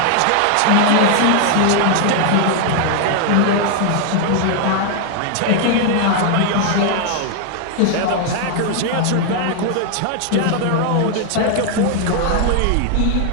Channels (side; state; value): both; different; correlation 0.00